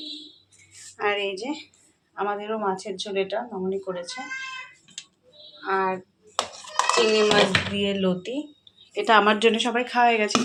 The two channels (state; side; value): identical; both; correlation 1.00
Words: আর এই যে আমাদেরও মাছের ঝোল, এটা মামনি করেছে, আর চিংড়ি মাছ দিয়ে লতি। এটা আমার জন্য সবাই খাওয়া হয়ে গেছে,